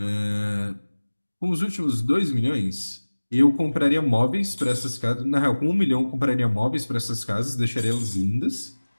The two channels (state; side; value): inverted; both; correlation -1.00